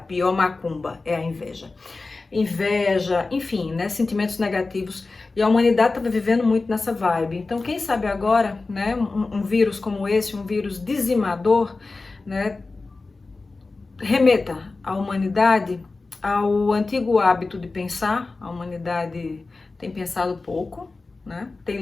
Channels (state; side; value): quieter; right; 3.6 dB